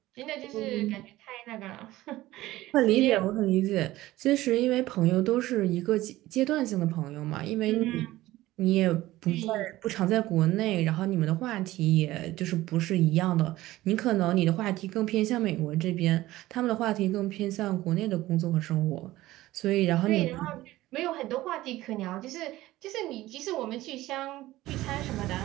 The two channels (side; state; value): left; quieter; 16.7 dB